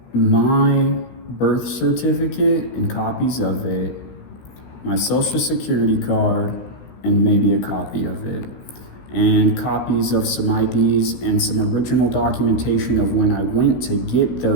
my birth certificate and copies of it, my social security card, and maybe a copy of it, and copies of some IDs and some original documentation of when I went to get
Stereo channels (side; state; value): right; late; 16 ms